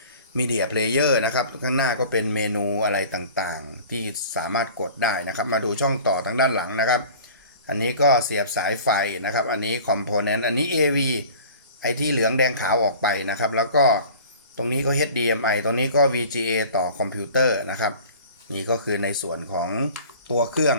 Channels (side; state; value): both; inverted; correlation -0.44